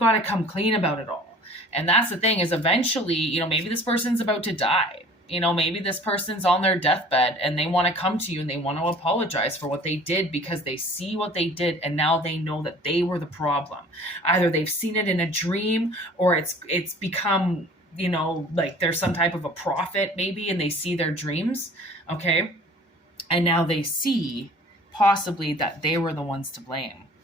to come clean about it all. And that's the thing, is eventually, you know, maybe this person's about to die. You know, maybe this person's on their deathbed and they want to come to you and they want to apologize for what they did, because they see what they did and now they know that they were the problem. Either they've seen it in a dream, or it's become, you know, like there's some type of a prophet maybe, and they see their dreams, okay? And now they see possibly that they were the ones to blame.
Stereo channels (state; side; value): normal; both; correlation 0.48